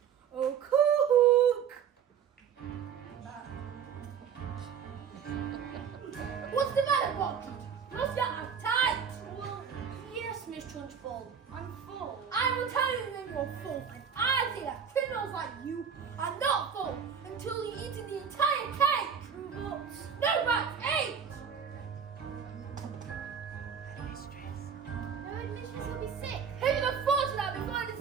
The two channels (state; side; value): quieter; left; 7.3 dB